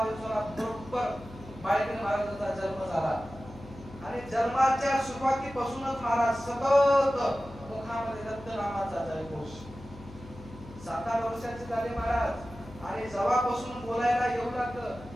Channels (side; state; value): left; noise; hum, 17 dB below the sound